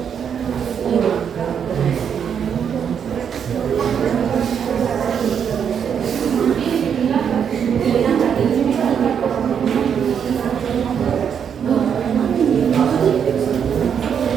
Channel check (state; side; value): quieter; left; 7.7 dB